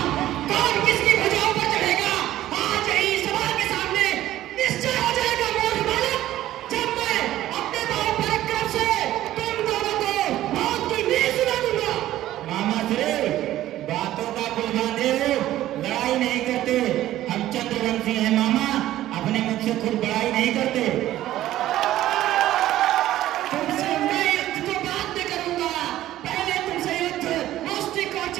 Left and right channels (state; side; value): quieter; left; 14.0 dB